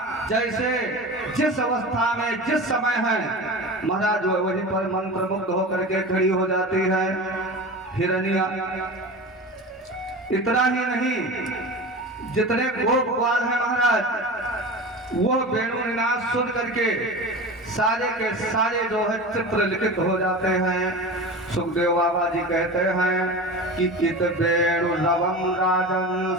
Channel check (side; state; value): both; normal; correlation 0.30